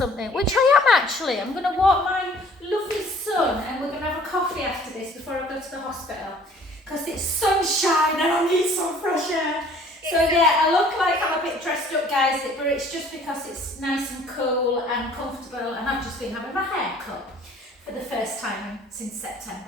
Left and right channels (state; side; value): normal; both; correlation 0.54